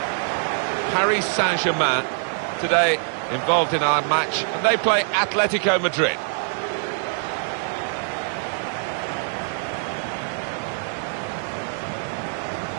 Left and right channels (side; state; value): left; silent; 63 dB below the other